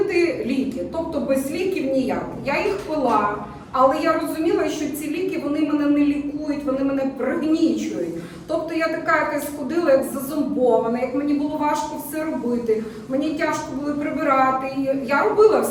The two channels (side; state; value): both; identical; correlation 1.00